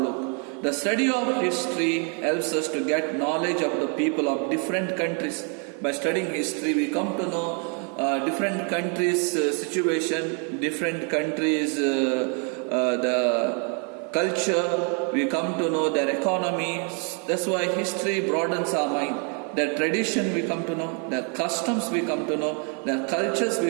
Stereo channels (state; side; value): quieter; left; 39.1 dB